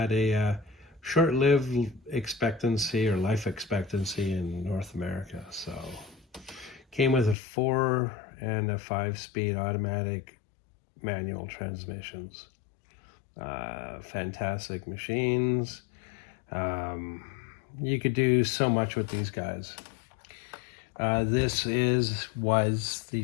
a short-lived expectancy or life expectancy in North America. So came with a 4 and a 5-speed automatic manual transmissions. Fantastic machines. You could do so much with these guys. This was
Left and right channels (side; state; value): right; drops out; at 7.4 s